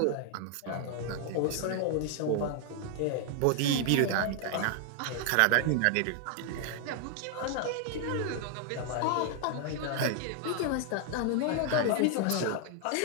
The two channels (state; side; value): different; both; correlation 0.00